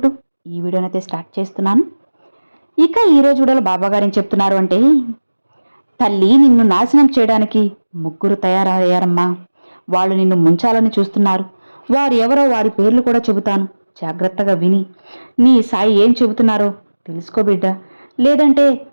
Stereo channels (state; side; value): inverted; both; correlation -1.00